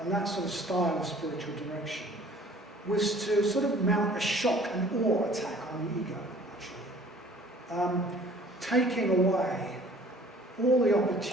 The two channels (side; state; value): both; normal; correlation 0.52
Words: and that sort of style of spiritual direction was to sort of mount a shock and awe attack on the ego, actually. Taking away all the